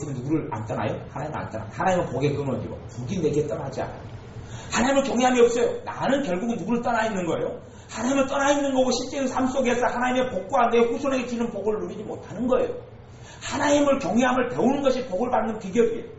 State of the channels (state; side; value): identical; both; correlation 1.00